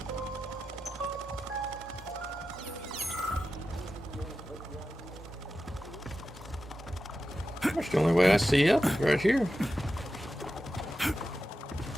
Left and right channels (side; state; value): both; normal; correlation 0.92